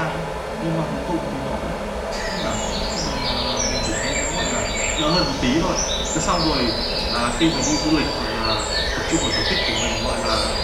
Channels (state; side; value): identical; both; correlation 1.00